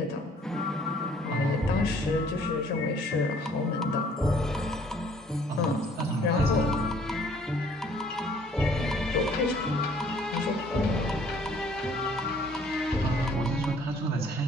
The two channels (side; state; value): both; normal; correlation 0.58